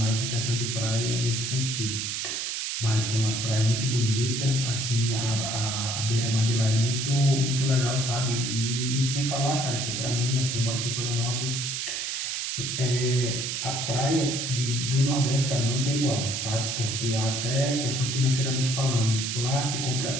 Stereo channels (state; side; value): noise; right; hiss, 2 dB below the sound